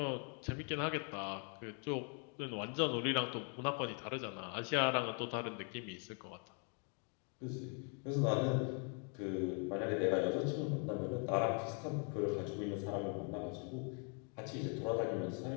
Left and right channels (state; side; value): quieter; right; 38.0 dB